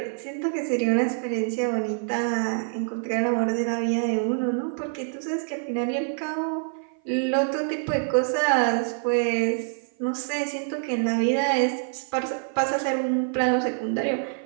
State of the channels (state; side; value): silent; left; 55 dB below the other